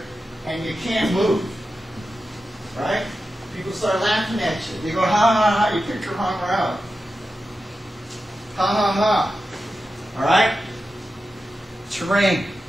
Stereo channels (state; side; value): normal; both; correlation 0.91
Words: and you can't move. Right? People start laughing at you. They go, ha ha ha, you kicked your hunger out. Ha ha ha. All right? Terrain.